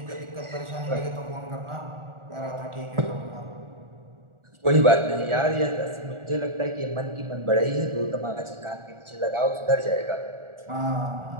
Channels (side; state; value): left; late; 1.4 ms